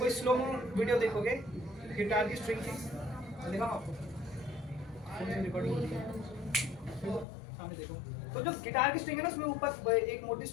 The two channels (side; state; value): right; drops out; at 7.2 s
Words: स्लो मो वीडियो देखोगे गिटार की स्ट्रिंग की, दिखाऊं आपको, रिकॉर्डिंग होती है, सामने देखो। तो जो गिटार की स्ट्रिंग है ना, उसमें ऊपर एक मोटी